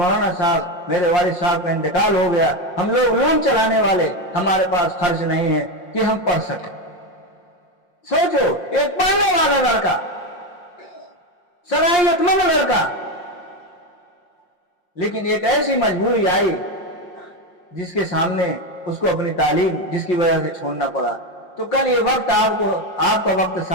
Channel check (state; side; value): late; right; 5.6 ms